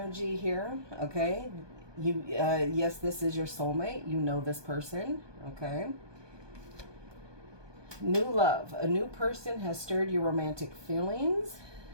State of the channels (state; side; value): late; left; 1.2 ms